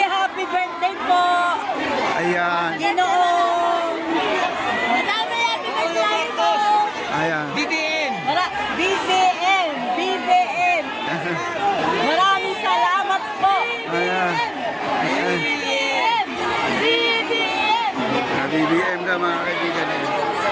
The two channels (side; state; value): both; identical; correlation 1.00